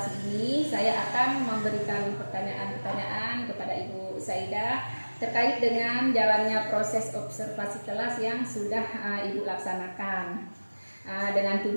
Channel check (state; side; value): inverted; both; correlation -1.00